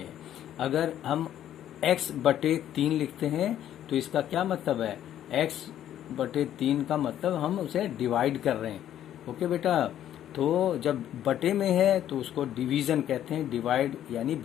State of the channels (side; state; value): right; quieter; 11.2 dB